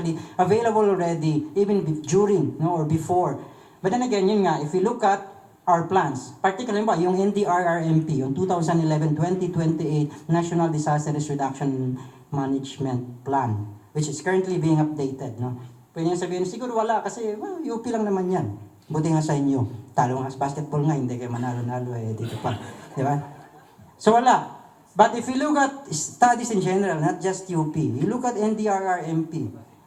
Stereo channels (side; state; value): both; identical; correlation 1.00